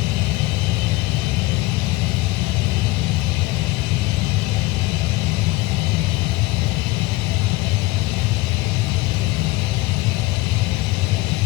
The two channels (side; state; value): right; quieter; 20.1 dB